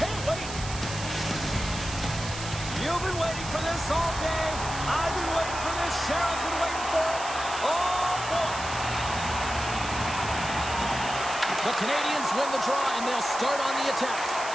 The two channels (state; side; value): noise; right; hiss, 10 dB below the sound